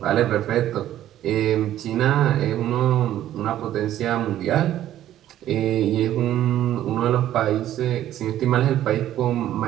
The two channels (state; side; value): quieter; left; 12.4 dB